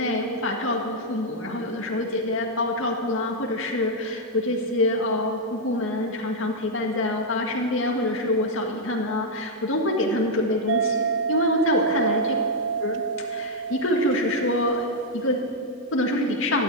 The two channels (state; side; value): normal; both; correlation -0.02